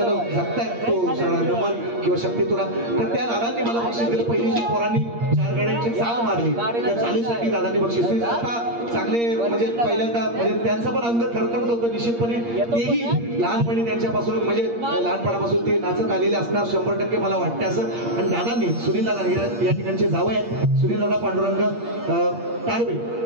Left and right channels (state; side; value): late; left; 8.6 ms